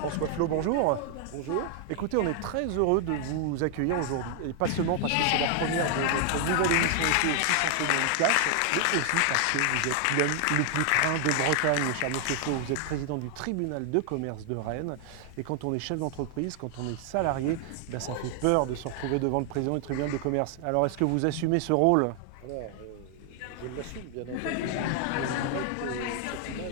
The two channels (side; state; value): both; different; correlation 0.00